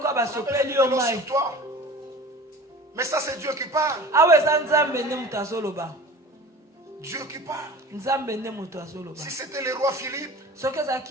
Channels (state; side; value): normal; both; correlation 0.39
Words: avait sur toi. Mais ça c'est Dieu qui parle. Dieu qui parle. Si c'était le roi Philippe,